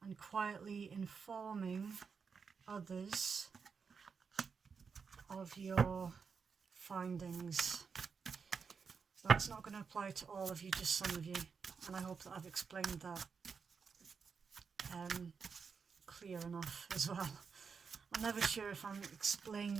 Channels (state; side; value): quieter; left; 5.7 dB